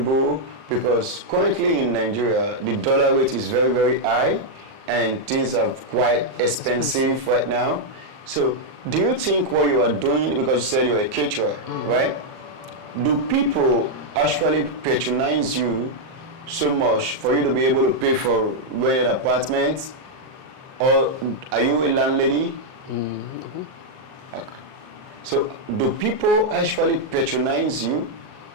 Because currently in Nigeria, the dollar rate is very, very high, and things are quite expensive right now. So, do you think what you are doing, because you said you're a caterer, right? Do people actually patronize you so much for you to be able to pay for rented apartments? Or are you a landlady? Okay. So, do people actually patronize you?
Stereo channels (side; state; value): left; late; 38 ms